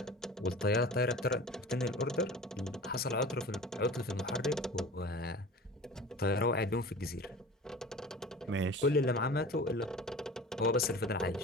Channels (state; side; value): normal; both; correlation 0.38